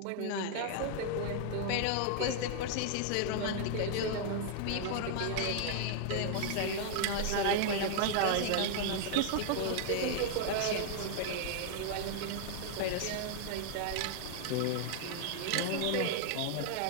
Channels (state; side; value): different; both; correlation 0.00